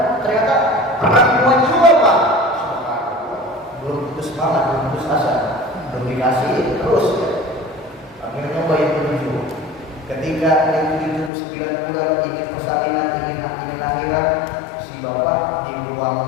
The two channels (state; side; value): drops out; right; at 11.3 s